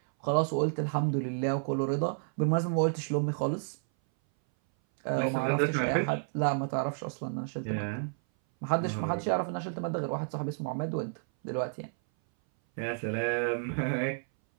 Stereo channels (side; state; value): left; silent; 57 dB below the other